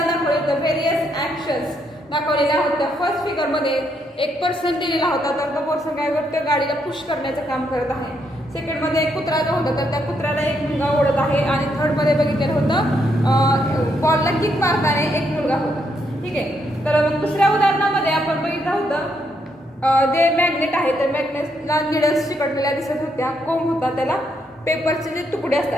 दाखवलं होतं व्हेरियस ॲक्शन्स दाखवलेल्या होत्या. फर्स्ट फिगरमध्ये एक पर्सन दिलेला होता, तर तो पर्सन काय करतो, गाडीला पुश करण्याचं काम करत आहे. सेकंडमध्ये एक कुत्रा जो होता तर त्या कुत्र्याला एक मुलगा ओढत आहे. आणि थर्डमध्ये बघितलेलं होतं बॉलला किक मारताना एक मुलगा होता. ठीक आहे. तर दुसऱ्या उदाहरणामध्ये आपण बघितलं होतं जे मॅग्नेट आहे तर मॅग्नेटला निडल्स चिकटलेल्या दिसत होत्या. कोंब होता, त्याला पेपरचे जे तुकडे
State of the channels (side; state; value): both; normal; correlation 0.76